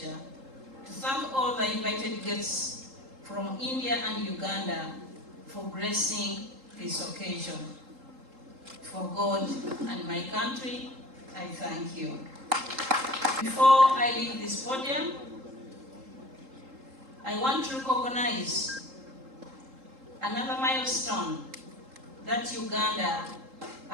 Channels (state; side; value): late; left; 3.8 ms